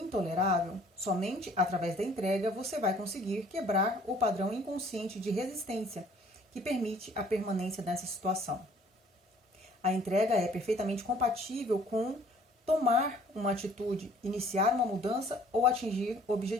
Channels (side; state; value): both; normal; correlation 0.56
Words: somente através da entrega você vai conseguir quebrar o padrão inconsciente de resistência que permite a permanência dessa situação. A entrega é perfeitamente compatível com tomar uma atitude, iniciar uma mudança ou atingir